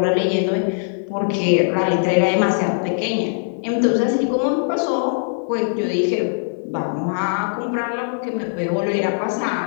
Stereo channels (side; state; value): right; silent; 56 dB below the other